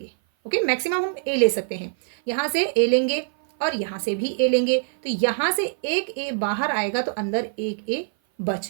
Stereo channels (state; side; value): silent; left; 56 dB below the other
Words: ओके, मैक्सिमम हम ए ले सकते हैं। यहाँ से ए लेंगे और यहाँ से भी ए लेंगे, तो यहाँ से एक ए बाहर आएगा तो अंदर एक ए